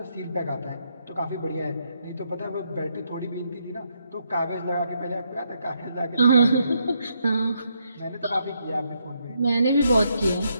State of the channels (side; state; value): both; inverted; correlation -0.77